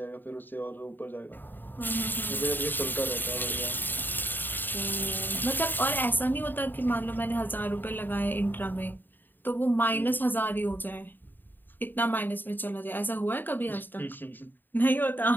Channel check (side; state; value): right; late; 0.092 ms